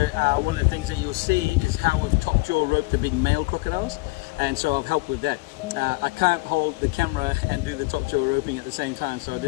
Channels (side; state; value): right; quieter; 24.0 dB